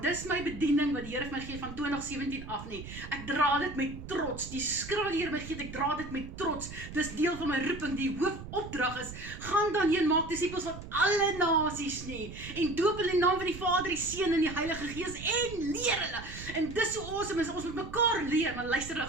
Dis my bediening wat die Here vir my gee van 2017 af nie. Ek dra dit met trots. Die skrif wat die Here my gee, ek dra dit met trots. Dis deel van my roeping. Die hoofopdrag is, gaan dan heen, maak disippels van alle nasies nie. En doop hulle in die naam van die Vader, die Seun en die Heilige Gees en leer hulle. En dis so awesome is, ons moet mekaar leer. Maar luister, ek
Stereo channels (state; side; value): noise; right; rumble, 12 dB below the sound